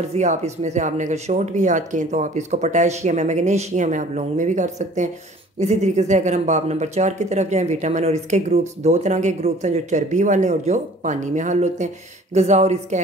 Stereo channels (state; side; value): normal; both; correlation 0.50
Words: आप इसमें से आपने अगर शॉर्ट भी याद किए तो आप इसको पोटेशियम है, मैग्नीशियम है, आप लॉन्ग में भी कर सकते हैं। इसी तरीके से अगर हम बाब नंबर 4 की तरफ जाएं, विटामिन और इसके ग्रुप्स, 2 तरह के ग्रुप्स हैं, जो चर्बी वाले और जो पानी में हल होते हैं। ग़िज़ा और इसके